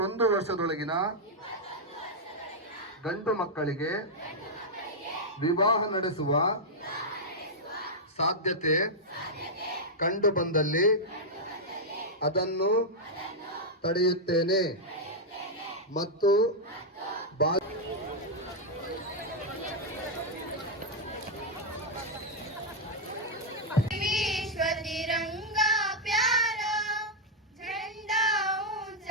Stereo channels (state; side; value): normal; both; correlation -0.04